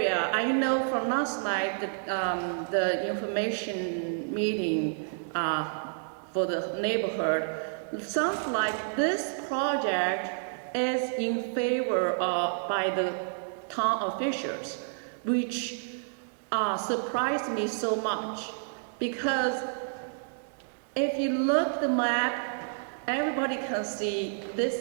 I know from last night that the information meeting for the neighborhood, sounds like this project is in favor of by the town officials, which surprised me so much, because if you look at the map, everybody can see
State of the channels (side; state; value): left; silent; digital silence